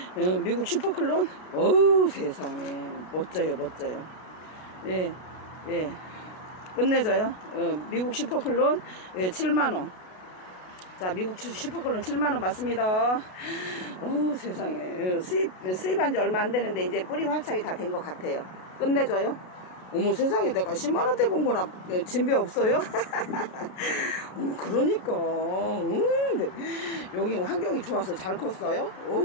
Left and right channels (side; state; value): right; late; 33 ms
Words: 미국 슈퍼클론? 어우, 세상에. 멋져요. 예. 끝내줘요. 미국 슈퍼클론, 예, 7만원. 자, 미국 슈퍼클론 7만원 맞습니다. 어우, 세상에. 수입한 지 얼마 안 되는데, 이제 뿌리 활착이 다 된 것 같아요. 끝내줘요. 어머, 세상에, 내가 10만원대 본 거나 진배 없어요? 어머, 그러니까. 여기 환경이 좋아서 잘 컸어요?